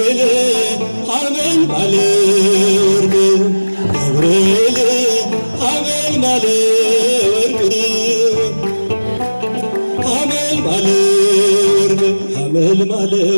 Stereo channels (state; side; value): inverted; both; correlation -1.00